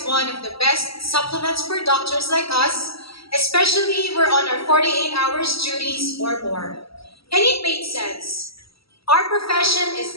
one of the best supplements for doctors like us, especially we're on our 48 hours duties or more. And it made sense. Our profession is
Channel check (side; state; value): right; late; 0.76 ms